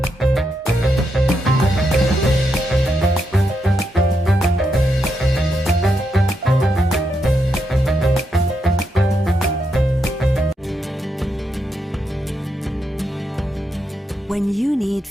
When you need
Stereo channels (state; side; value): normal; both; correlation 0.82